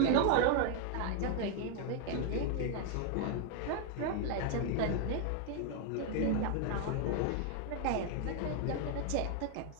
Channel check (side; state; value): both; different; correlation 0.00